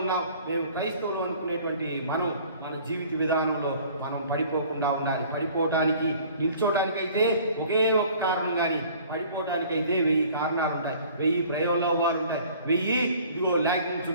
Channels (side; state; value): both; inverted; correlation -0.51